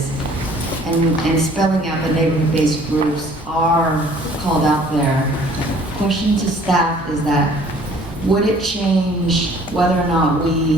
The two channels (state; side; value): normal; both; correlation 0.55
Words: and spelling out the neighborhood-based groups are called out there. Question to staff is that, would it change whether or not